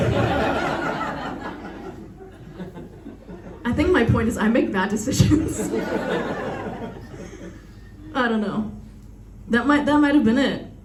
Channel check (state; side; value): identical; both; correlation 1.00